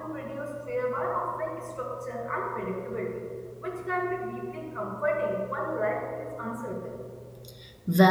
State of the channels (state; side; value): identical; both; correlation 1.00